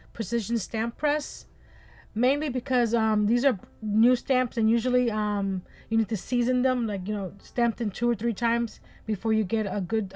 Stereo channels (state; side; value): identical; both; correlation 1.00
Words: Precision Stamp Press, mainly because these are new stamps and usually you need to season them, like, stamp them 2 or 3 times before you get a good